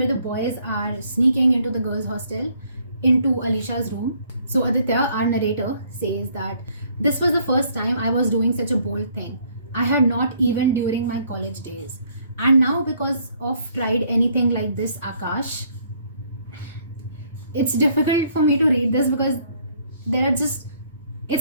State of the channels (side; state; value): both; inverted; correlation -0.65